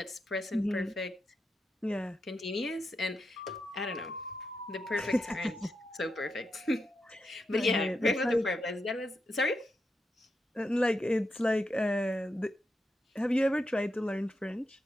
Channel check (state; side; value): normal; both; correlation 0.85